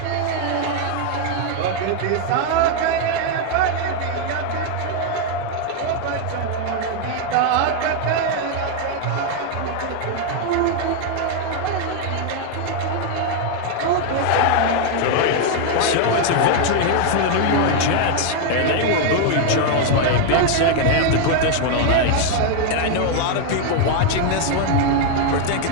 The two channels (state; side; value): different; both; correlation 0.01